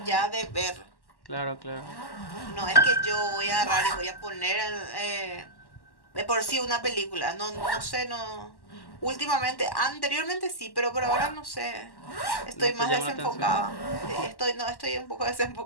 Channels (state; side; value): late; right; 1.1 ms